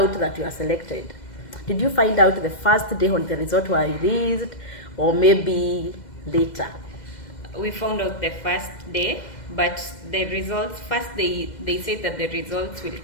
that you are selected, did you find out the first day when the results were released or maybe later? We found out the first day, but the results, first they said that the results will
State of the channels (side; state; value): right; late; 2.1 ms